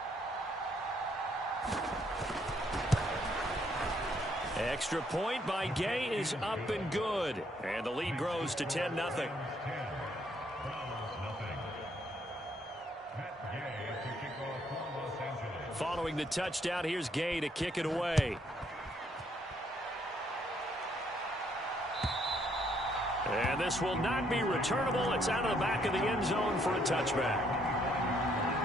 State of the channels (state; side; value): normal; both; correlation 0.70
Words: Extra point by Gay is up and good. And the lead grows to 10-0. Following the touchdown, here's Gay to kick it away. And this will not be returnable. It's out of the back of the end zone for a touchback.